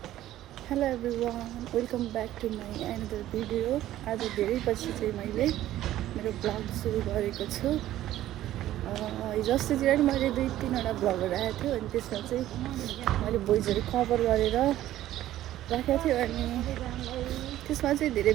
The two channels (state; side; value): quieter; left; 13.7 dB